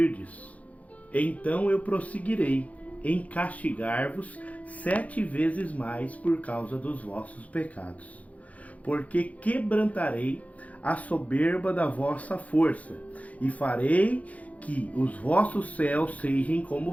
então eu prosseguirei em castigar-vos 7 vezes mais por causa dos vossos pecados. Porque quebrantarei a soberba da vossa força, e farei que os vossos céus sejam como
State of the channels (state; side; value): late; right; 0.069 ms